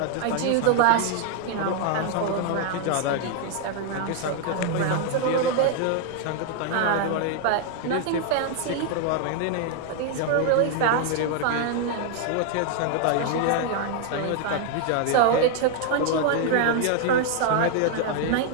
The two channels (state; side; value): different; both; correlation 0.00